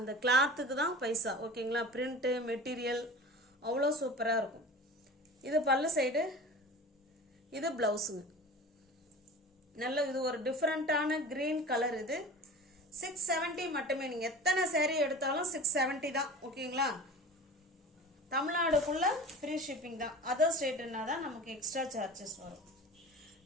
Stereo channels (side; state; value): both; normal; correlation 0.37